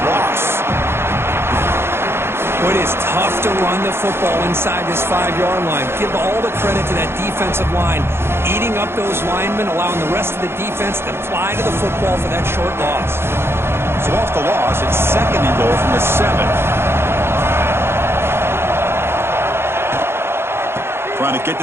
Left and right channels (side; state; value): left; late; 0.12 ms